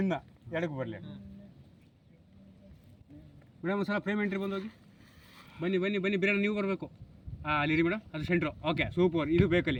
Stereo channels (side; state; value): both; identical; correlation 1.00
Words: ಎಡಕ್ಕೆ ಬರಲಿ ಮೇಡಮ್. ಒಂದ್ಸಲ ಫ್ರೇಮ್ ಎಂಟ್ರಿ ಬಂದೋಗಿ. ಬನ್ನಿ ಬಿರಿಯಾನಿ ನೀವು ಬರಬೇಕು. ಅಲ್ಲಿರಿ ಮೇಡಮ್, ಅದು ಸೆಂಟ್ರು. ಓಕೆ ಸೂಪರ್, ಇದು